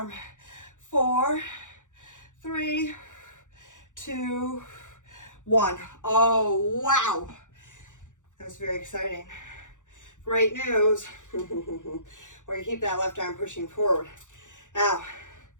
4, 3, 2, 1. Oh, wow. That was very exciting. Great news. We're gonna keep that left arm pushing forward. Now,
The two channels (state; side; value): late; right; 0.86 ms